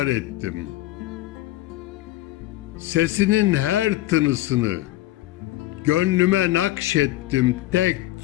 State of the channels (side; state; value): right; quieter; 16.0 dB